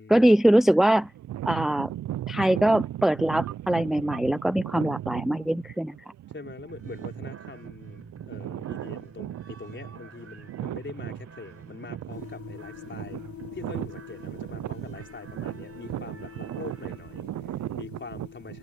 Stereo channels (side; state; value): both; normal; correlation 0.91